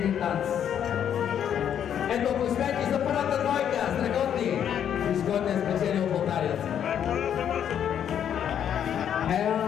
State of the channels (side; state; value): right; quieter; 9.2 dB